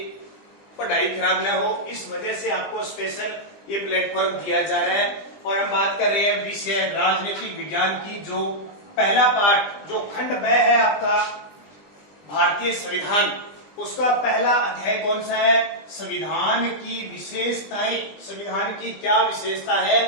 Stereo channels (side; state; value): right; late; 20 ms